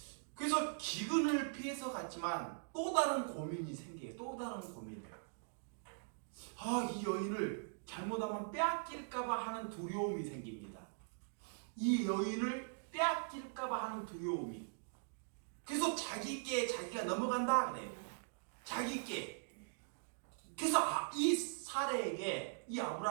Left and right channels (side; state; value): left; silent; digital silence